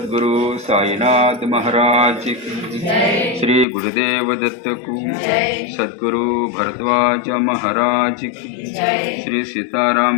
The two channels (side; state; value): right; drops out; at 3.7 s